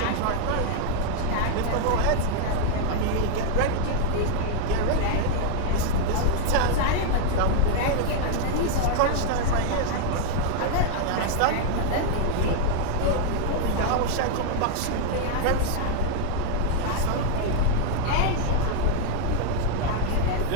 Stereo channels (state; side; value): different; both; correlation 0.00